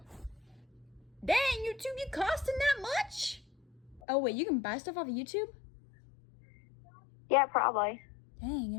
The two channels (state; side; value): drops out; right; at 4.0 s